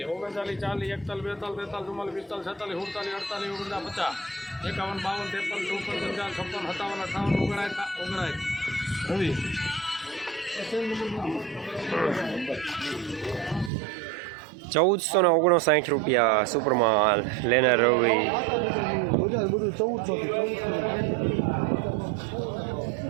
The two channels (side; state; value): left; drops out; at 13.7 s